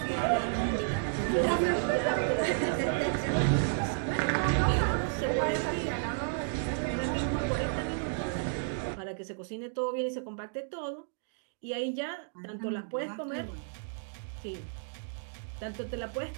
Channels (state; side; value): silent; left; digital silence